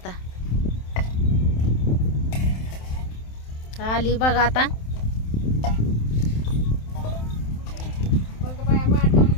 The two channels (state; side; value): late; right; 27 ms